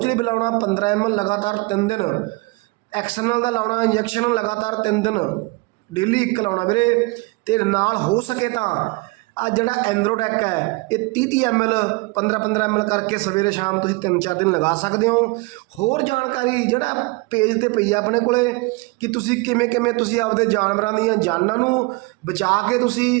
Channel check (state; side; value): quieter; left; 25.9 dB